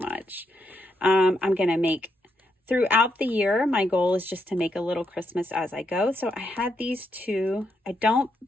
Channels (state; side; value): normal; both; correlation 0.80